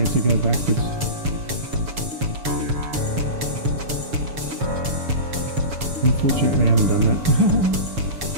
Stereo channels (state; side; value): late; left; 7.0 ms